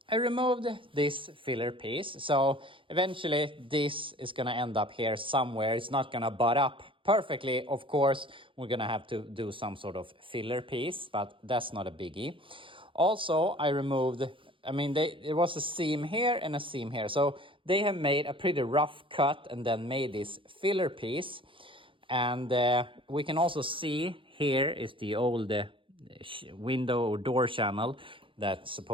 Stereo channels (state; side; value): late; left; 0.25 ms